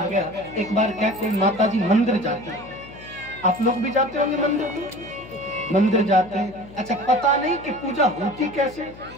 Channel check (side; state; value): left; noise; hum, 18 dB below the sound